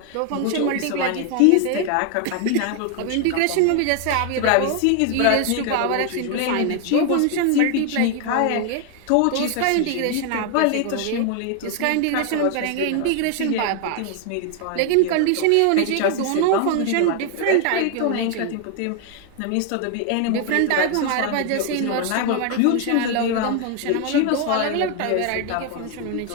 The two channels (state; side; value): different; both; correlation 0.01